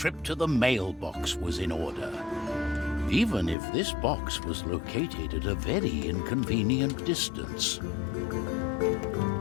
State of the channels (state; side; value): drops out; right; at 3.6 s